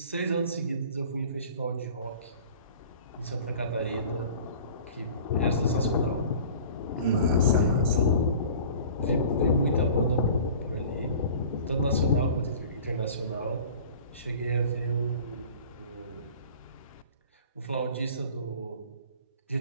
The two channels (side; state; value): both; inverted; correlation -0.44